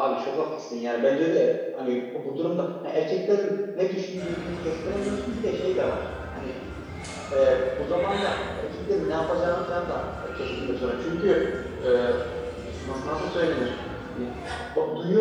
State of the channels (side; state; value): both; identical; correlation 1.00